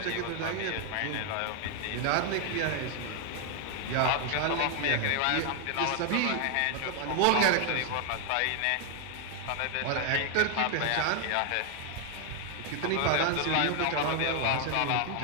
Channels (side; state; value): both; different; correlation 0.00